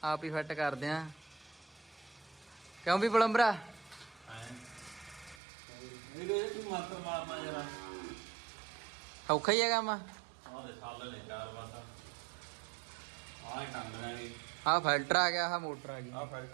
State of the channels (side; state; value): left; drops out; at 5.4 s